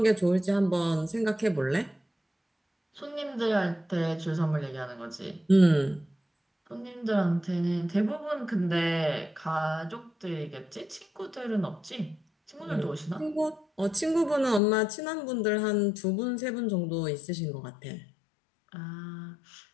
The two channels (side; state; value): right; drops out; at 14.6 s